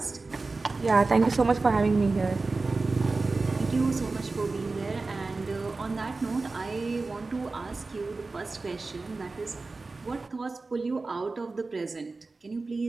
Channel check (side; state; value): left; quieter; 3.7 dB